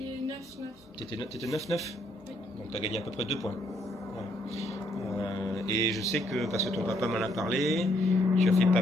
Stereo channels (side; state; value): both; normal; correlation 0.71